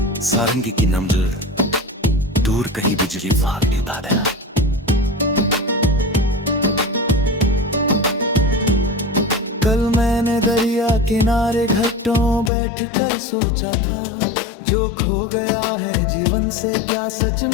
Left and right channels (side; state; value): right; drops out; at 12.5 s